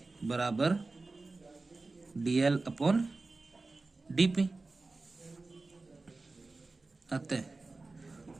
बराबर DL अपॉन DP। अतः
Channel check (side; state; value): left; quieter; 3.5 dB